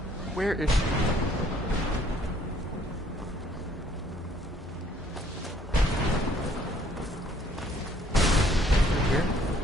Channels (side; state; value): both; normal; correlation 0.62